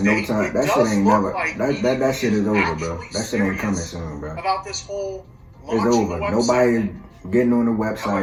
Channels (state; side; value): identical; both; correlation 1.00